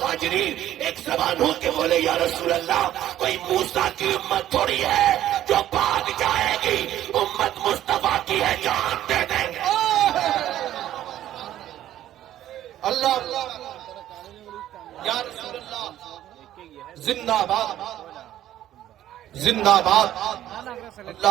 ایک زبان ہو کے بولے یا رسول اللہ کوئی موسیٰ کی امت تھوڑی ہے جو بھاگ جائے گی، امت مصطفیٰ کی ہے، جان دے دیں گے. اللہ یا رسول اللہ زندہ باد زندہ باد. اللہ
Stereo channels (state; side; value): quieter; left; 12.5 dB